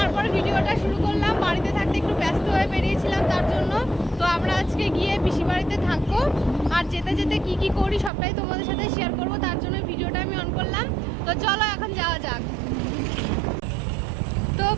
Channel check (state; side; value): drops out; left; at 8.1 s